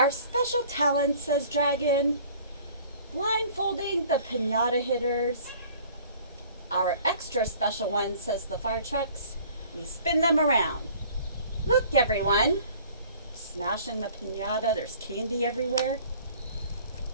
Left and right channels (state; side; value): inverted; both; correlation -0.51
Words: special talent, says Dragon, blindfolding the piñata hitters. Our extra special one, says the fire trucks, we spin them around. Look, everyone. Smashing the piñata, there's candy everywhere.